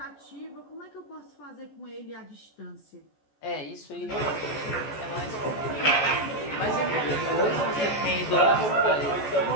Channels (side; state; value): right; late; 14 ms